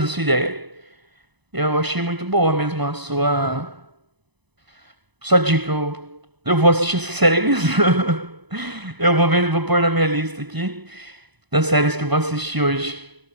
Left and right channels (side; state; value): left; late; 1.0 ms